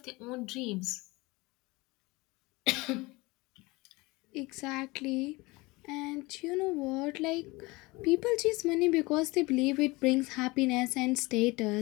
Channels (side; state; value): right; quieter; 23.2 dB